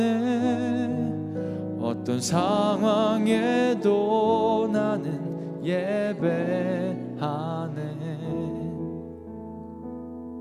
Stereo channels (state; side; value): identical; both; correlation 1.00